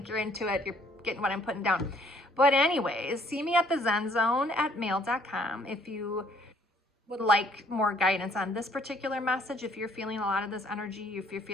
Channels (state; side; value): normal; both; correlation 0.62